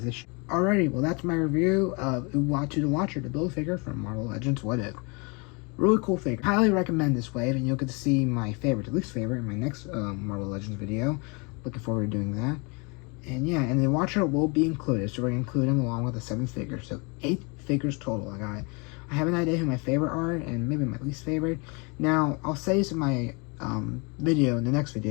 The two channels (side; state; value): right; quieter; 31.2 dB